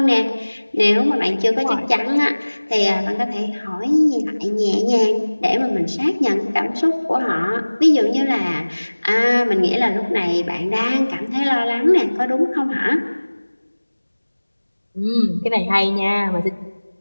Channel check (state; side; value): inverted; both; correlation -1.00